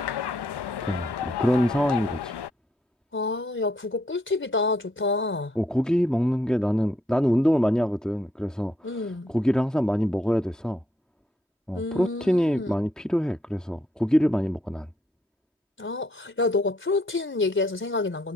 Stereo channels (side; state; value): both; normal; correlation 0.73